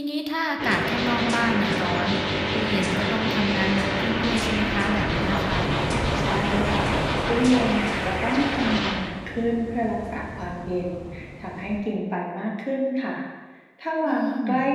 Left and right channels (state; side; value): identical; both; correlation 1.00